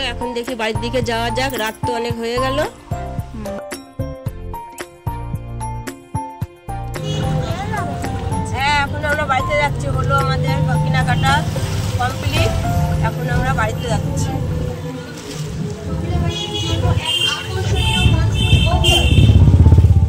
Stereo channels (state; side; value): identical; both; correlation 1.00